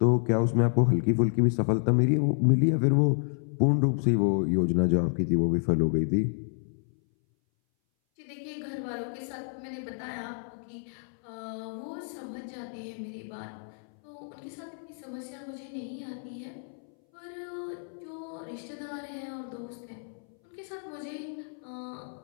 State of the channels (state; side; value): silent; right; 58 dB below the other